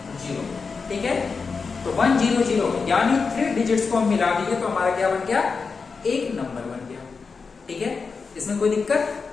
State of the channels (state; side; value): quieter; right; 4.9 dB